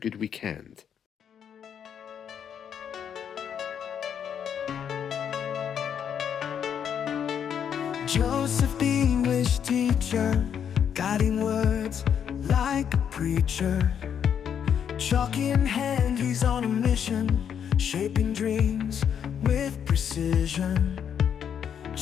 weekend. Joseph, the English teacher, guiding words like a preacher. Chalk in hand, he's on a mission, shaping dreams with precision.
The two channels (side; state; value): right; quieter; 8.3 dB